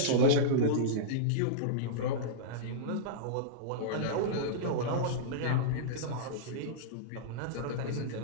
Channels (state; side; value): different; both; correlation -0.03